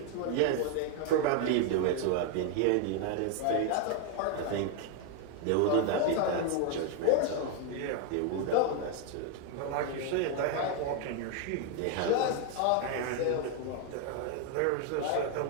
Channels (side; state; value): both; different; correlation 0.01